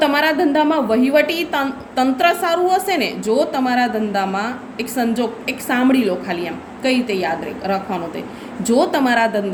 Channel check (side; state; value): both; identical; correlation 1.00